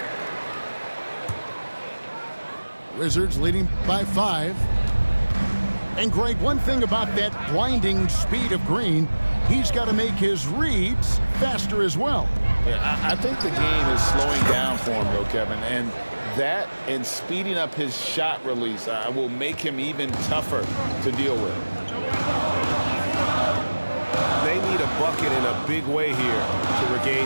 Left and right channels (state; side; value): inverted; both; correlation -1.00